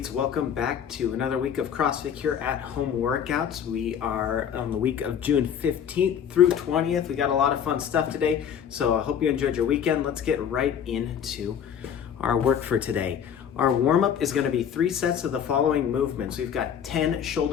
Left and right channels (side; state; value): right; quieter; 8.4 dB